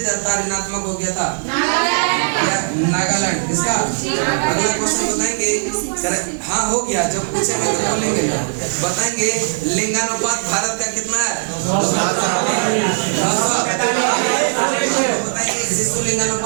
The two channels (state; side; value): silent; left; 67 dB below the other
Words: था ऋणात्मक हो गया था? नागालैंड। किसका? अगला क्वेश्चन बताएंगे हाँ हो गया, जब पूछेंगे तो बोलेंगे ना। बताएंगे लिंगानुपात भारत का कितना है? 900। बताएंगे शिशु